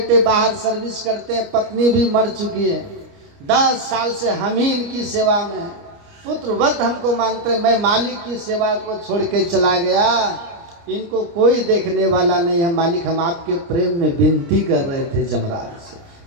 बाहर सर्विस करते हैं, पत्नी भी मर चुकी है, 10 साल से हम ही इनकी सेवा में हैं, पुत्रवत हमको मानते हैं। मैं मालिक की सेवा को छोड़ के चला गया, इनको कोई देखने वाला नहीं है। मालिक हम आपके प्रेम में विनती कर रहे थे जमराज से।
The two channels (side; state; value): left; late; 29 ms